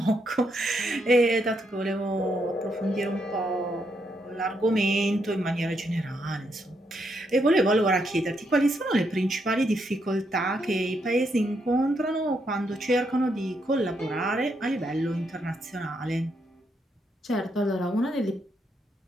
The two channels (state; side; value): normal; both; correlation 0.78